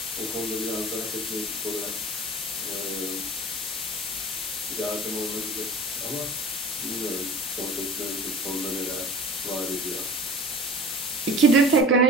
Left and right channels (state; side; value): normal; both; correlation 0.40